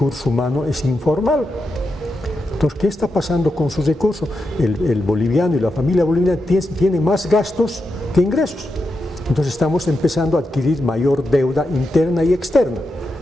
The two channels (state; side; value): normal; both; correlation 0.87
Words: humano es informal. Entonces, ¿qué está pasando con sus recursos? El boliviano y la familia boliviana tiene más gastos que ingresos. Entonces estamos empezando a adquirir mayor deuda interna y externa.